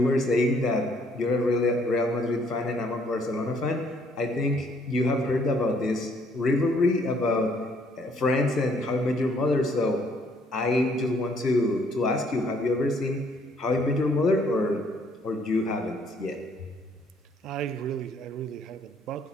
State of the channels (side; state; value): both; normal; correlation 0.65